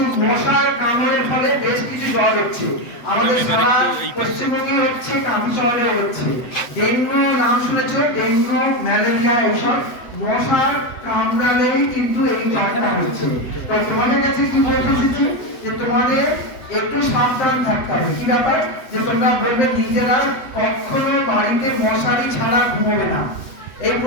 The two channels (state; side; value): late; right; 7.8 ms